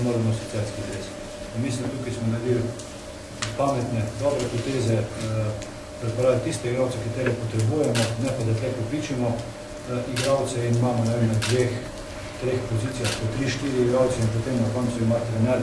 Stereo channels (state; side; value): identical; both; correlation 1.00